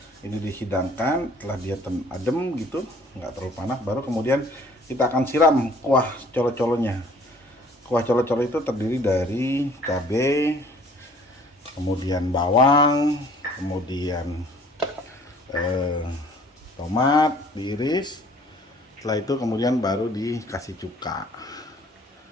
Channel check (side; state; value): both; normal; correlation 0.55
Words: ini dihidangkan, setelah dia adem gitu, nggak terlalu panas, baru kemudian kita akan siram kuah colo-colonya. Kuah colo-colo itu terdiri dari cabai, kemudian bawang, kemudian tomat diiris. Setelah itu kemudian baru dikasih cuka.